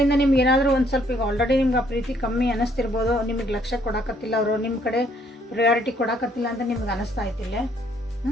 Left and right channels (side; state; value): both; normal; correlation 0.66